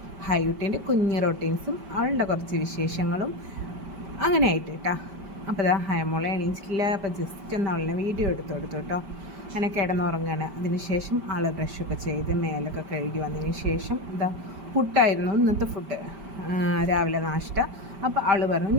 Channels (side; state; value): left; late; 5.1 ms